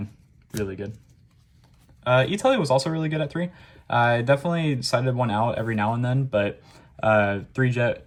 really good. E-Tele was also really good at 3. I definitely sided one out every now and then, but 3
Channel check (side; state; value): both; identical; correlation 1.00